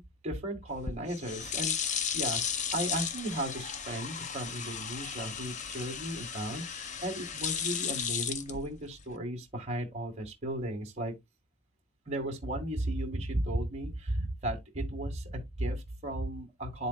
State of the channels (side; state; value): both; normal; correlation 0.35